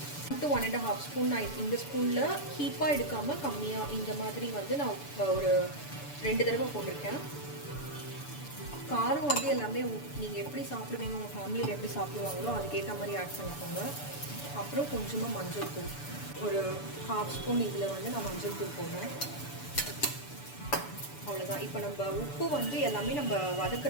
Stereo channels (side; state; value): right; late; 6.9 ms